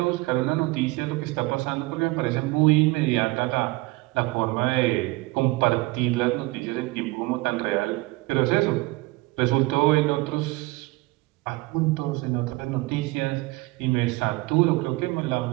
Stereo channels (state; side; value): quieter; left; 21.9 dB